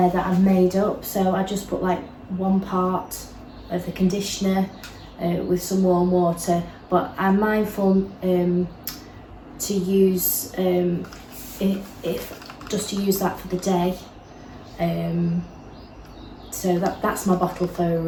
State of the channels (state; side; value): identical; both; correlation 1.00